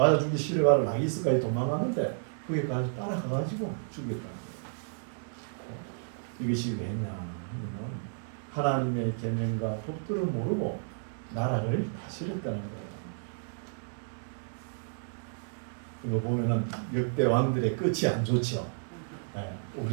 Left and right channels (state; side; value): silent; left; digital silence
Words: 죽기 싫어가지고 라기스까지 도망가는데 거기까지 따라가가지고 죽였다는 거예요. 이것이 왜냐? 하나님의 계명과 법도를 모르고 나라를 다스렸다는 거예요. 이거 보면은 역대 왕들의 끝이 안 좋죠. 네,